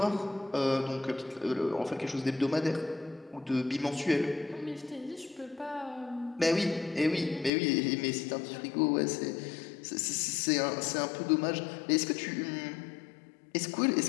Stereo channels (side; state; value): right; drops out; at 7.5 s